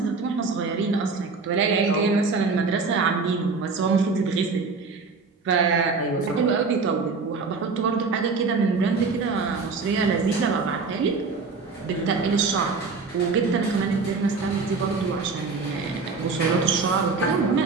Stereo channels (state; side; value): quieter; left; 4.4 dB